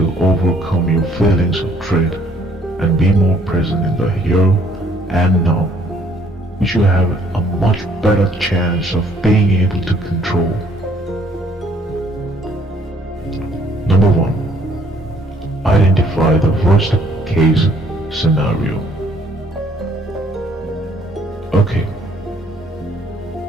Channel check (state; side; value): normal; both; correlation 0.63